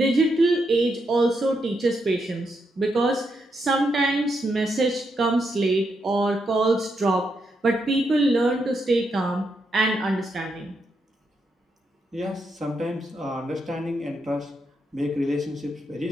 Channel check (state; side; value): normal; both; correlation 0.81